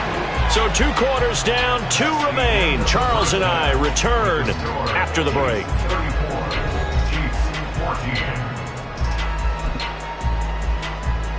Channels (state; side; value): identical; both; correlation 1.00